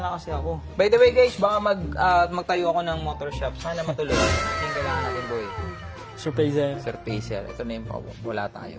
kasi ako. By the way guys, baka magtayo ako ng motor shop. Sana matuloy. Yung kailangan natin, boy. Surpriser. Surfacer. Ito na yung wala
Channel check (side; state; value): both; identical; correlation 1.00